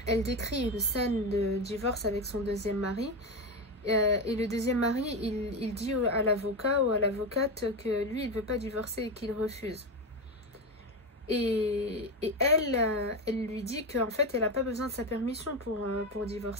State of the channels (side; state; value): both; normal; correlation 0.15